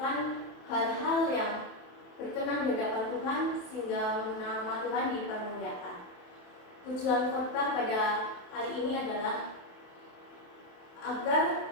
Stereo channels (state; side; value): late; right; 27 ms